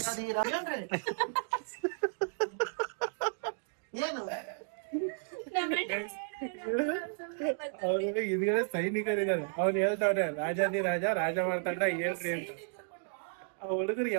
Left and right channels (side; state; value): left; silent; digital silence